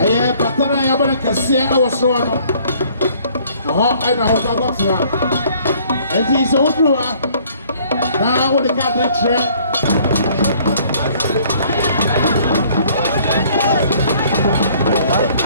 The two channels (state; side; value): inverted; both; correlation -0.59